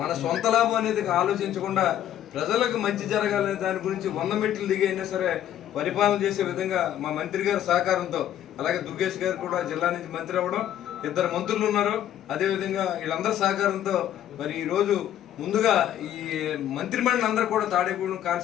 మన సొంత లాభం అనేది ఆలోచించకుండా ప్రజలకు మంచి జరగాలనే దాని గురించి 100 మెట్లు దిగి అయినా సరే పరిపాలన చేసే విధంగా మా మంత్రి గారి సహకారంతో, అలాగే దుర్గేష్ గారు కూడా జిల్లా నుంచి మంత్రి అవ్వడం, 2 మంత్రులు ఉన్నారు, అదేవిధంగా వీళ్ళందరి సహకారంతో మరి ఈరోజు ముందుగా ఈ మంత్రిమండలి అందరూ కూడా తాడేపల్లి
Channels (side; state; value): right; quieter; 11.3 dB